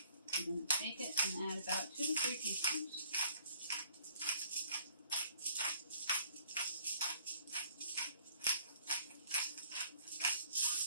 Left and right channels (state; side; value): inverted; both; correlation -0.59